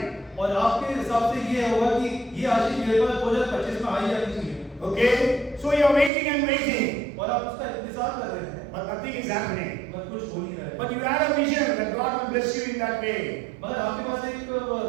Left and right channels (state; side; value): drops out; left; at 6.1 s